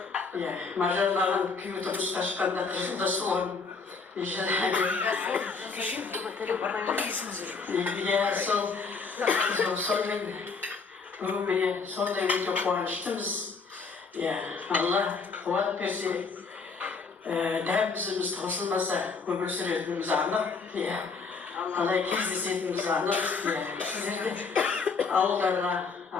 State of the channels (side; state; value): right; quieter; 4.7 dB